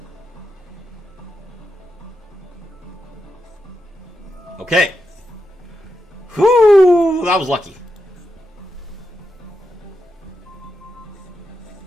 Okay. Whoo! That was lucky.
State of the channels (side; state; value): both; normal; correlation 0.86